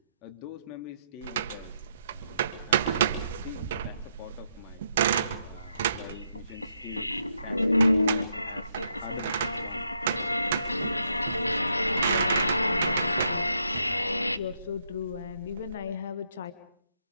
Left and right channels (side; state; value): both; inverted; correlation -0.77